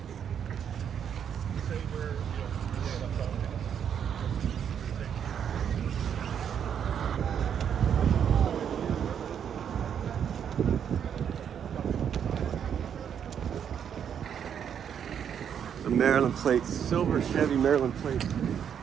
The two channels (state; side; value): quieter; left; 8.4 dB